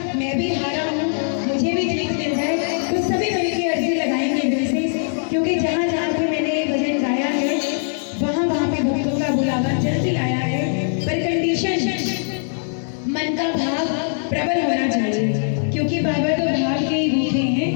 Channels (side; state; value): right; silent; digital silence